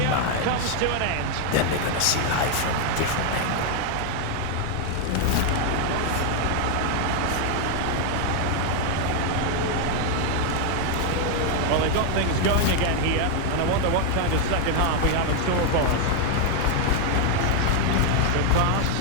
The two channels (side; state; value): both; different; correlation 0.01